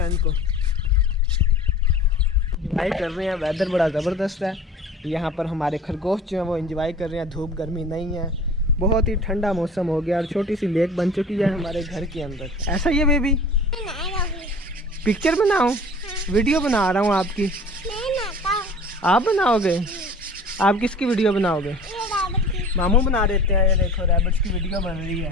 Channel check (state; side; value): normal; both; correlation 0.43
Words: को। इंजॉय कर रहे हैं, वेदर बड़ा ज़बरदस्त है यहाँ पर। हमारे खरगोश जो है वो इंजॉय कर रहे हैं, धूप गर्मी नहीं है, बहुत ही ठंडा मौसम हो गया। और छोटी सी लेक बन चुकी है हमारे घर के अंदर। ऐसा ही है बेबी? पिक्चर बनाऊं? वीडियो बना रहा हूँ आपकी। आप बनाओगे? आप किसकी वीडियो बनाओगे? मामू बना देते हैं। ये देखो रैबिट्स की वीडियो बन रही